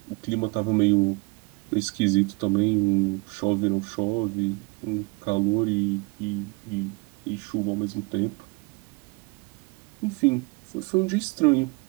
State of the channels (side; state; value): left; quieter; 27.3 dB